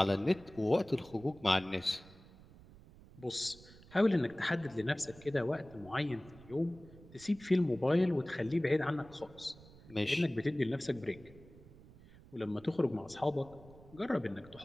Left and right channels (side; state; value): right; noise; rumble, 21 dB below the sound